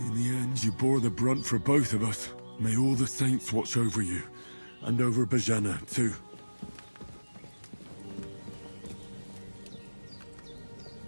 the end, you bore the brunt for both of us. May all the saints watch over you, and over Bajana, too.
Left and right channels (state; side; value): inverted; both; correlation -1.00